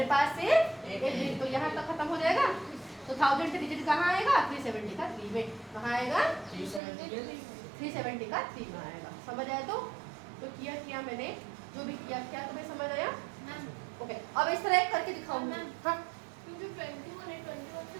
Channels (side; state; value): left; drops out; at 6.8 s